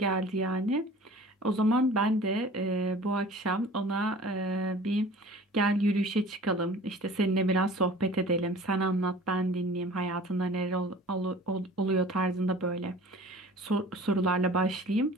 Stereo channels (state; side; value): normal; both; correlation 0.45